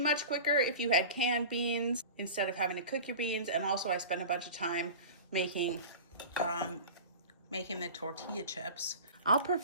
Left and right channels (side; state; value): both; inverted; correlation -0.34